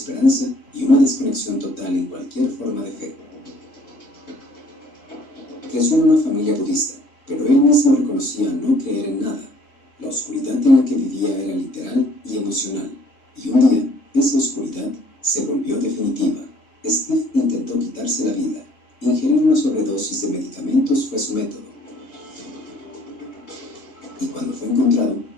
y una desconexión total en cualquier forma de fe. Creció en una familia budista, pero él mismo reconocía no creer en nada. La oscuridad en la que vivía era literal y emocional, y un día esa oscuridad se volvió definitiva. Steve intentó quitarse la vida. Ingerir una sobredosis de medicamentos fue su método. Y cuando fue encontrado,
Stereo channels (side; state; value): right; late; 3.7 ms